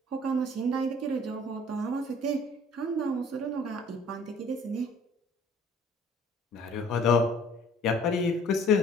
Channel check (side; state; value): both; normal; correlation 0.53